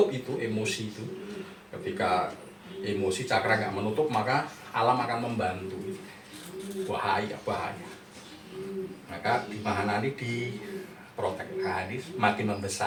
itu emosi itu, ketika emosi cakra nggak menutup, maka alam akan membantu. Bahaya. Maka di Mahanani diprotek, ini makin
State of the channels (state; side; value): identical; both; correlation 1.00